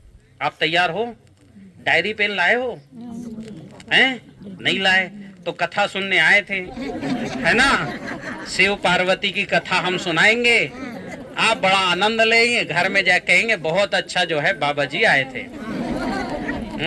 आप तैयार हो? डायरी पेन लाए हो? हैं? नहीं लाए तो कथा सुनने आए थे, है ना? शिव पार्वती की कथा हम सुनाएंगे, आप बड़ा आनंद लेंगे, घर में जा कहेंगे बहुत अच्छा जो है बाबा जी आए थे।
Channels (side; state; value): both; identical; correlation 1.00